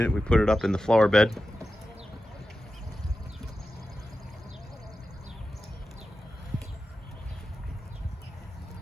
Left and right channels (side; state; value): both; normal; correlation 0.92